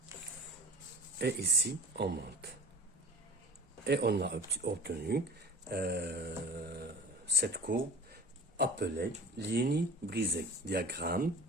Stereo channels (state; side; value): normal; both; correlation 0.39